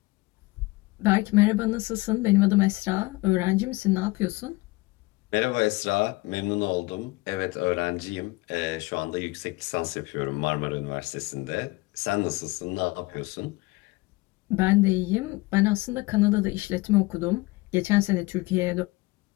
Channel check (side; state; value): right; quieter; 22.4 dB